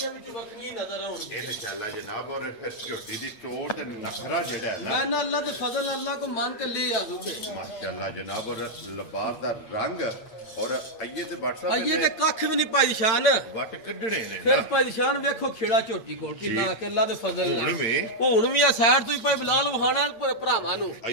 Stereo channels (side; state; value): right; late; 8.6 ms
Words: ਵਿੱਚ ਵੱਖਰੀਆਂ ਹੀ ਨਜ਼ਰ ਆਉਣਗੀਆਂ ਇਨਸ਼ਾਅੱਲਾ ਜਨਾਬ ਔਰ ਫਿਰ ਝੋਟੀ ਦੀ ਟੋਰ ਤੇ ਨਖਰਾ ਜਿਹੜਾ ਹੈ ਨਾ ਮੈਂ ਨਾ ਅੱਲਾ ਦੇ ਫਜ਼ਲ ਅੱਲਾ को मांग के ले आ दूंगे माशाअल्लाह जनाब और लिबास दा रंग और आइए ते WhatsApp ये ते कख भी नहीं पाई शान वट कढणे ने फिर पाई शान वेखो खेड़ा झोटी कोल किन्ना के अल्लाह दे फजल ਹੁਣ ਵੀ ਹੁਣ ਵੀ ਆ ਸਾਈਡ ਤੋਂ ਹੀ ਪਈ ਬਲਾਲ ਵਹਾਣਾ ਭਰਾਵਾਂ ਨੂੰ